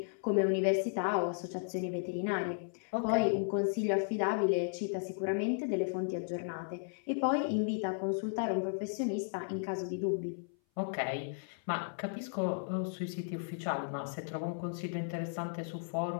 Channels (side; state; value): right; silent; 55 dB below the other